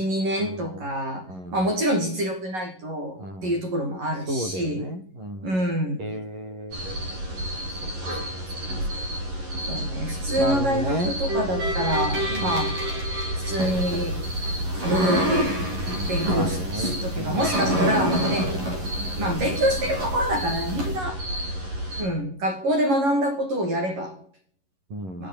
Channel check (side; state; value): left; late; 11 ms